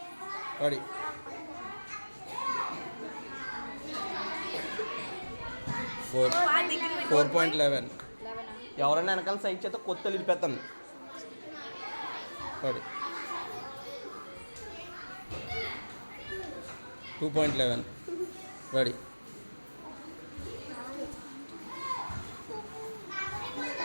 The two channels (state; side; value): inverted; both; correlation -1.00